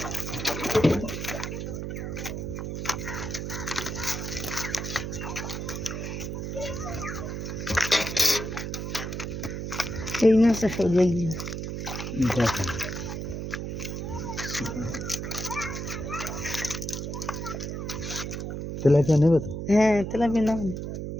এই মাছটা সরিয়ে গিয়ে দেখেন তেলাপিয়া নেবে তো? হ্যাঁ তেলাপিয়া না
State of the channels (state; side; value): noise; right; hum, 5 dB below the sound